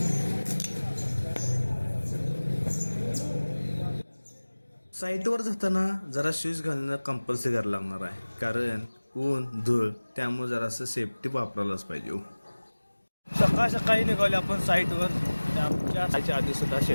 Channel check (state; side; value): inverted; both; correlation -1.00